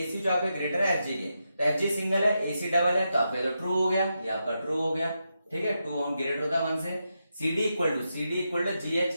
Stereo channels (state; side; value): inverted; both; correlation -0.86